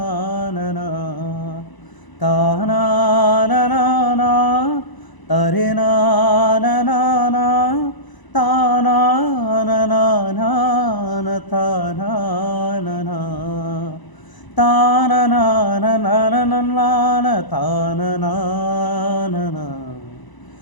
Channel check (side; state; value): right; late; 1.0 ms